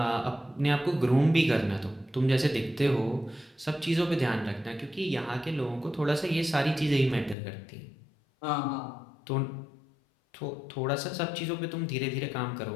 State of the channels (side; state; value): right; drops out; at 7.4 s